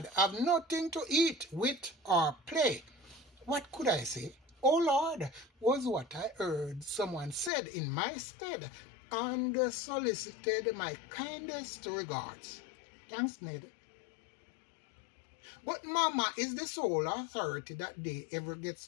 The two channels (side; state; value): right; drops out; at 7.5 s